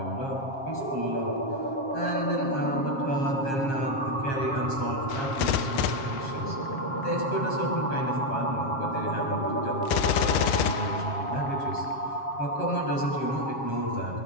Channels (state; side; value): late; right; 7.4 ms